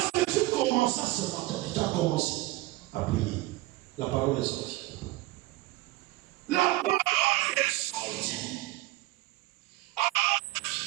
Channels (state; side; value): quieter; left; 18.7 dB